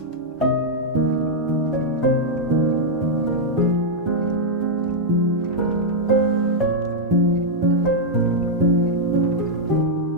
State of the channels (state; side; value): normal; both; correlation -0.05